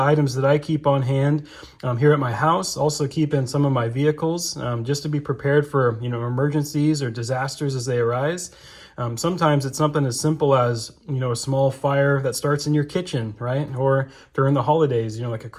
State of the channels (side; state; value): both; identical; correlation 1.00